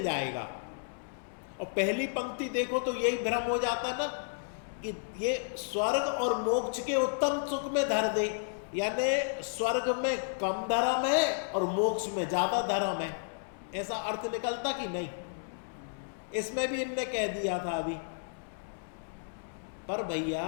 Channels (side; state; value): right; silent; 56 dB below the other